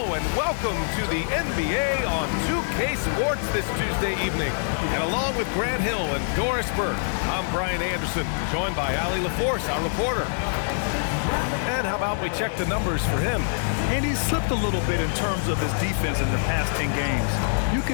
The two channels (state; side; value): silent; right; digital silence